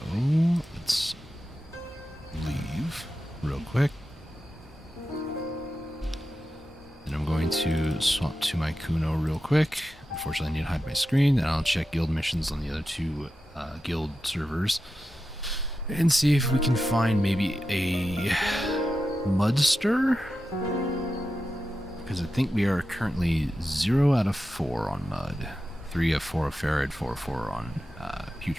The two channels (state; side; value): normal; both; correlation 0.91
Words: let's leave real quick. And I'm going to swap to my Kuno real quick. Unfortunately, I need to hide my screen. And I'll check guild missions on the other two guild servers. And see if we can find maybe a Mudster. Because I think we are currently 0 out of 4 on Mud. 3 of 4 of Farad, 4 of 4 on